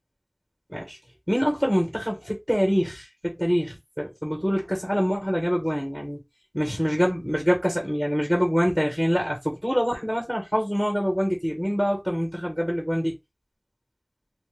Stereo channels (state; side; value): identical; both; correlation 1.00